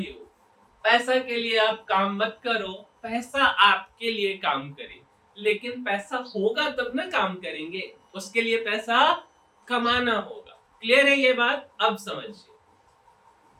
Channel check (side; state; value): both; identical; correlation 1.00